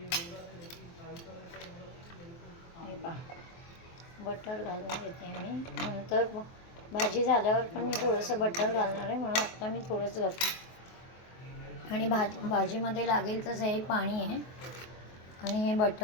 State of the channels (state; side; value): late; right; 23 ms